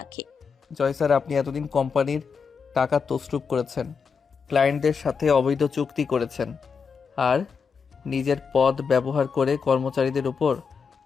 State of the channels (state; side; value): quieter; right; 5.8 dB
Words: জয় স্যার, আপনি এতদিন কোম্পানির টাকা তছরূপ করেছেন, ক্লায়েন্টদের সাথে অবৈধ চুক্তি করেছেন, আর নিজের পদ ব্যবহার করে কর্মচারীদের উপর